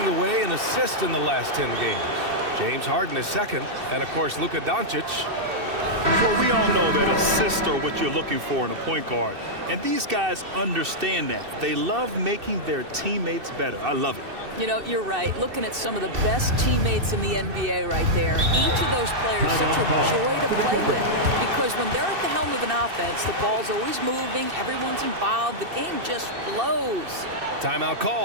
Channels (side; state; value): left; late; 2.6 ms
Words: the way in assists in the last 10 games. James Harden is second, and of course Luka Doncic. Well, we all know that assists are what you're looking for in a point guard. And these guys understand that. They love making their teammates better. I love it. You know, you're right. Looking at some of the best teammates in the NBA right there. Each of those players such a joy to play with. Because when they're at the helm of an offense, the ball's always moving, everyone's involved, the game just flows. Timeout